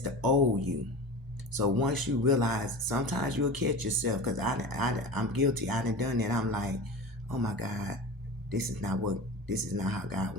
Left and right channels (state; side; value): normal; both; correlation 0.32